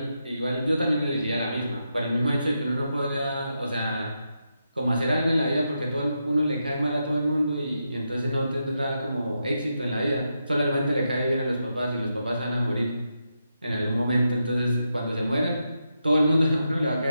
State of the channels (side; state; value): both; inverted; correlation -0.86